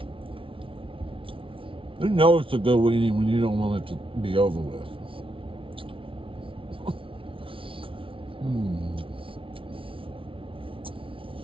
You know it's a good weenie when you don't want it to be over with.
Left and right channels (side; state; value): left; late; 0.25 ms